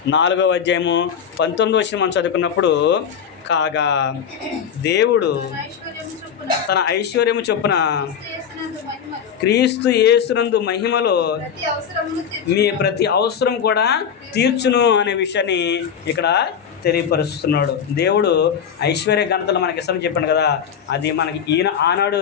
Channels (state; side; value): quieter; right; 7.7 dB